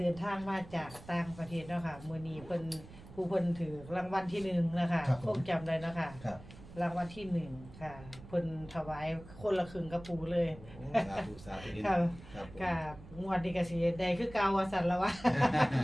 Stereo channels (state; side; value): noise; right; rumble, 17 dB below the sound